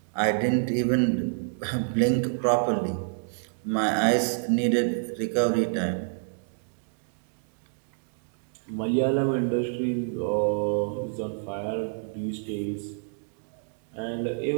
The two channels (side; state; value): left; silent; digital silence